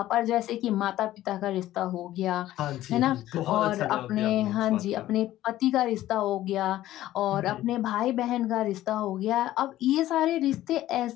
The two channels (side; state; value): right; quieter; 14.4 dB